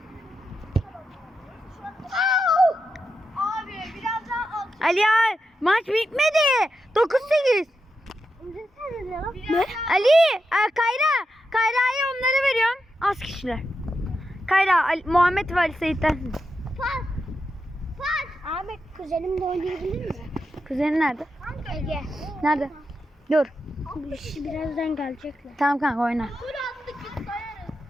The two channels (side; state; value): both; normal; correlation 0.88